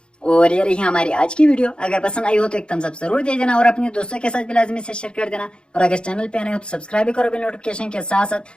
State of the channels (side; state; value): right; late; 0.053 ms